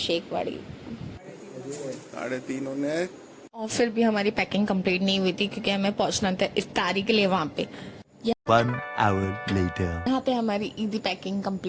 3:30 होने। और फिर भी हमारी पैकिंग कंप्लीट नहीं हुई थी, क्योंकि हमें पहुंचना था इफ्तारी के लिए वहाँ पे। 1 hour later. यहाँ पे हमारी ईदी पैकिंग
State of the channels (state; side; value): identical; both; correlation 1.00